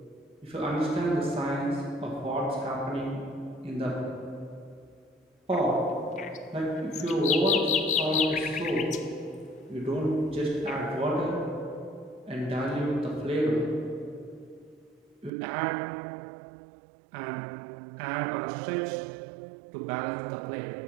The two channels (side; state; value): left; drops out; at 15.3 s